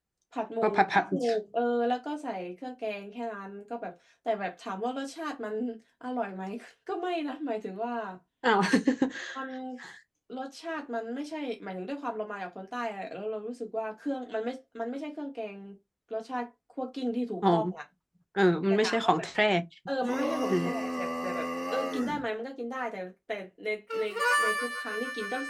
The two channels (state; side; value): identical; both; correlation 1.00